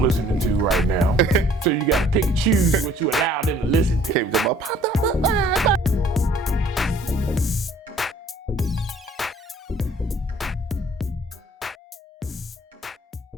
listening to right now, so you gotta pick and choose what you allow them to listen to. Okay, we talking about pop.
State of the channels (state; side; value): normal; both; correlation 0.57